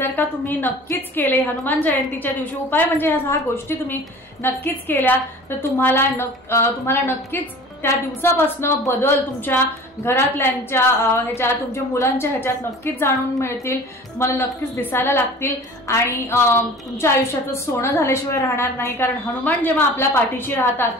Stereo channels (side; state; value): both; normal; correlation 0.42